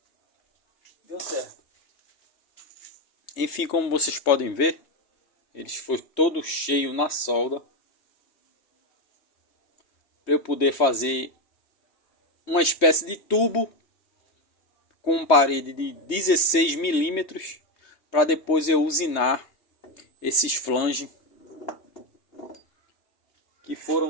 deu certo. Enfim, como vocês podem ver, eles foi todo cheio na solda, para eu poder fazer uma espécie de tubo com parede de 16 milímetros, para depois eu usinar esses flanges que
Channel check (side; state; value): right; late; 3.2 ms